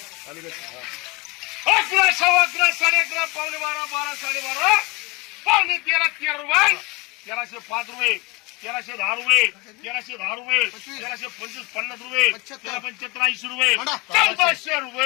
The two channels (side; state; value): right; quieter; 25.3 dB